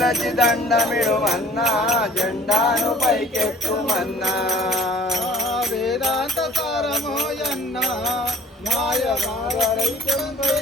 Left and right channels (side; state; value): both; normal; correlation 0.50